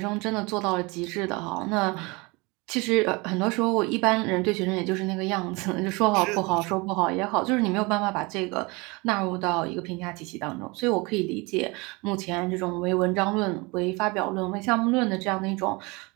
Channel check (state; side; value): quieter; left; 26.2 dB